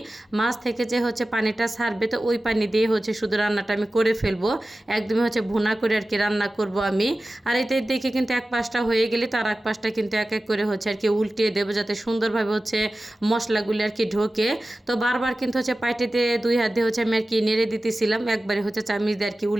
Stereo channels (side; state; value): both; normal; correlation 0.95